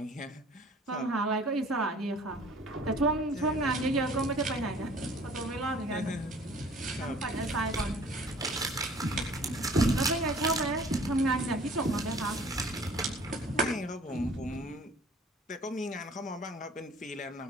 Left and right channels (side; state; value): both; normal; correlation 0.51